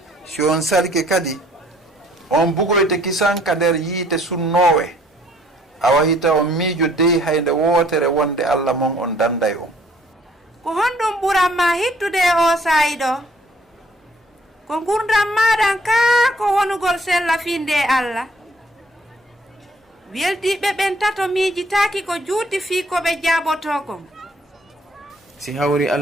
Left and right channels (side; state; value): both; normal; correlation 0.61